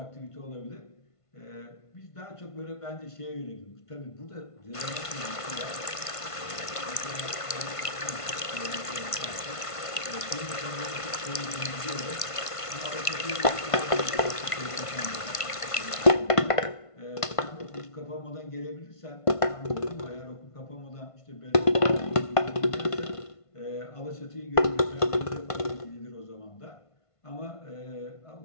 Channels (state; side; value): late; right; 1.5 ms